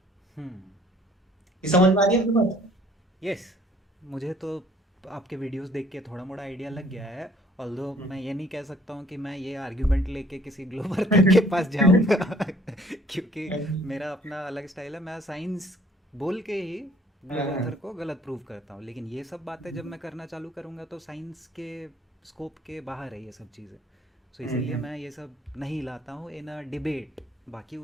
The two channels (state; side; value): normal; both; correlation 0.57